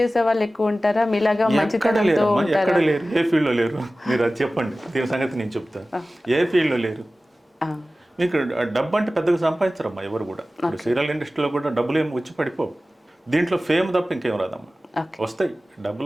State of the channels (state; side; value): normal; both; correlation 0.96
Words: వాళ్ళు ఎక్కువ ఉంటారా, మీలాగా మంచితనంతో ఉంటారా? ఎక్కడ లేరు, ఏ ఫీల్డ్లో లేరు, మీరు అది చెప్పండి, దీని సంగతి నేను చెప్తాను. ఏ ఫీల్డ్లో లేరు. మీకు డబ్బు అంటే పెద్దగా సంపాదించరమ్మా ఎవరు కూడా. ఇప్పుడు సీరియల్ ఇండస్ట్రీలో కూడా డబ్బులు ఏమి వచ్చి పడిపోవు. దీంట్లో ఫేమ్ తప్ప ఇంకేం రాదమ్మా. వస్తాయి,